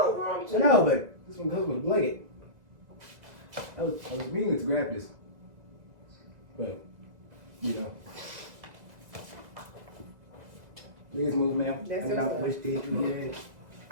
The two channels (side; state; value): left; late; 2.0 ms